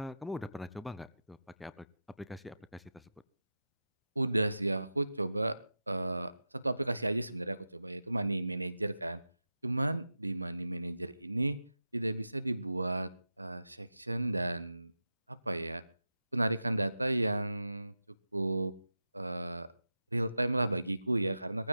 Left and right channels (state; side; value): inverted; both; correlation -0.92